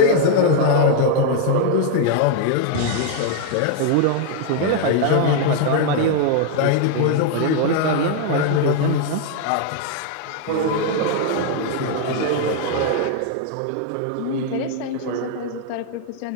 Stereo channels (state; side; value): different; both; correlation 0.00